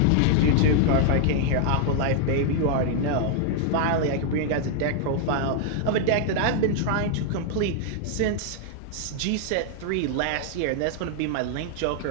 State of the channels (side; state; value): both; different; correlation 0.00